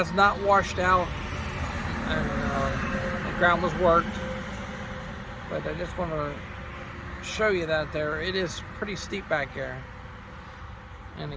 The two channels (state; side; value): identical; both; correlation 1.00